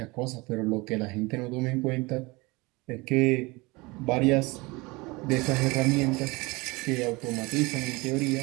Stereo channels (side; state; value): left; quieter; 24.3 dB